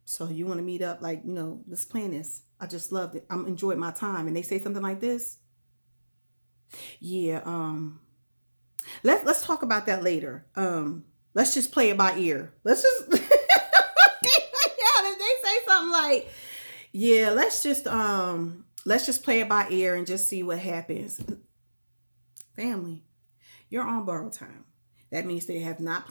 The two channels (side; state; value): both; inverted; correlation -1.00